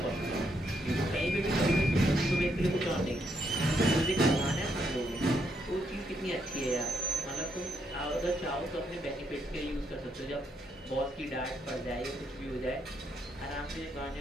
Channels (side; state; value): both; normal; correlation 0.76